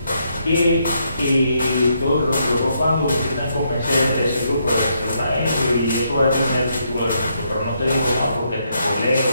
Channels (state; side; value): inverted; both; correlation -0.76